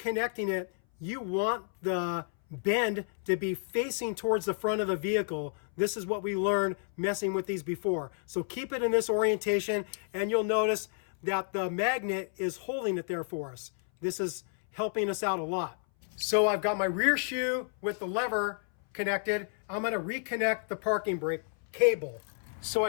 it, you want the bend to be facing towards the front of the vehicle. This is what we learned messing with these before. So keep it in this orientation, and you'll notice that the magnet is holding it there for us. This is helping us out a lot. So I've got my rear shoe with the lever connected. I'm going to reconnect the parking brake cable. So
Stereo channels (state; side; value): silent; right; 57 dB below the other